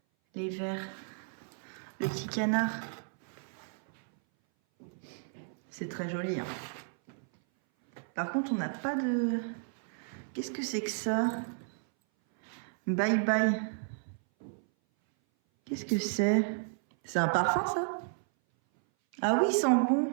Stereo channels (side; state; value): left; silent; 56 dB below the other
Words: Les verres. Le petit canard. C'est très joli. Hein. Par contre, on n'a pas de... Qu'est-ce que c'est que ça? Bye bye. Qu'est-ce que c'est? C'est un parfum, ça? Ah oui, il sent bon.